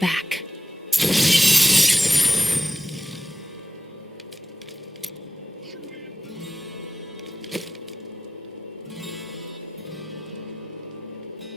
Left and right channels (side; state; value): both; normal; correlation 0.92